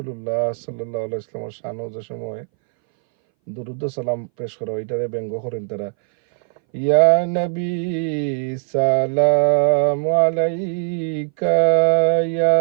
সাল্লাল্লাহু আলাইহি ওয়াসাল্লামের শানও যে সময় দুরূদ সালাম পেশ করা, এটারে ব্যঙ্গ করেন তারা। ইয়া নবী সালামু আলাইকা, ইয়া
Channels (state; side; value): silent; left; 62 dB below the other